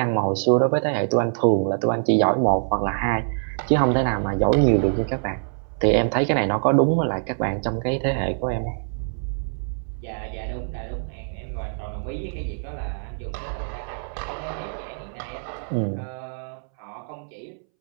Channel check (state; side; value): silent; left; 62 dB below the other